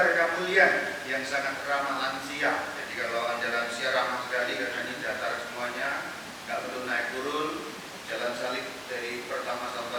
Kemuliaan yang sangat ramah lansia. Jadi kalau Anda lansia ramah sekali karena ini datar semuanya, nggak perlu naik turun, jalan salib dari pertama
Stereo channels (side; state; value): both; identical; correlation 1.00